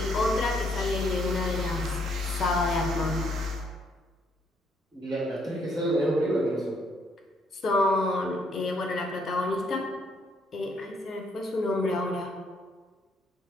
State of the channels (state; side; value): normal; both; correlation 0.70